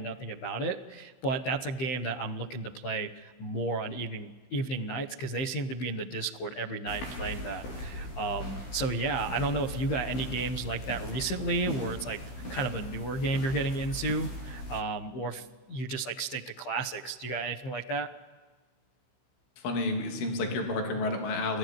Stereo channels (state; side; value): late; right; 15 ms